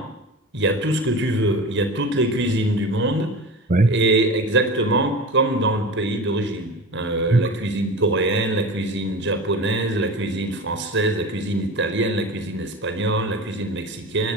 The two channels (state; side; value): normal; both; correlation 0.31